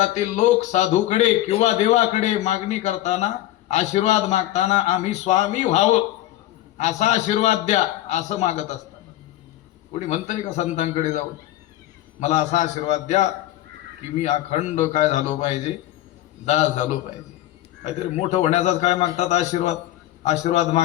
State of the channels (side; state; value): right; quieter; 14.7 dB